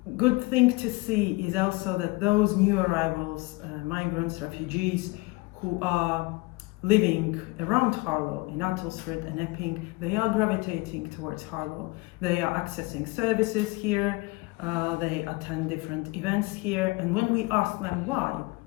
good thing to see is also that those new arrivals, migrants, refugees, who are living around Harlow, in Nuttall Street and Epping, they are gravitating towards Harlow. They are accessing services here, they attend different events here, and when we ask them why,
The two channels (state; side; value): quieter; right; 24.1 dB